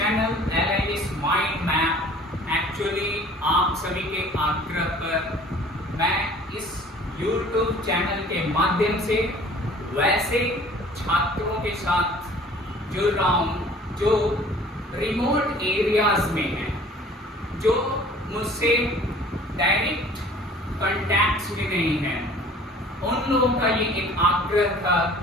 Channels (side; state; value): both; normal; correlation 0.50